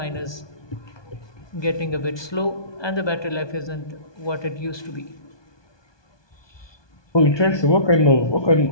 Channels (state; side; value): late; right; 1.2 ms